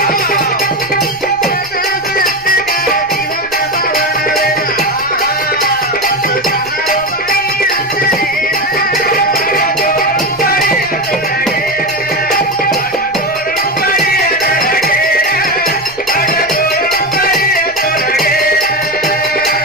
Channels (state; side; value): noise; right; rumble, 25 dB below the sound